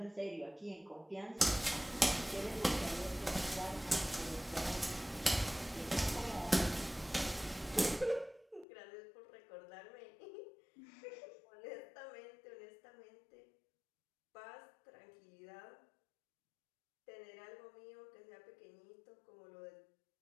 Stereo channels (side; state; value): right; drops out; at 8.7 s